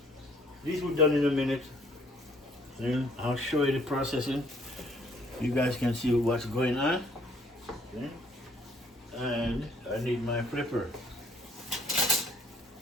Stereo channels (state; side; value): normal; both; correlation 0.62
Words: These were done in a minute. Then I'll show you the processing. You guys can see what's going on. Okay. And I need my flipper.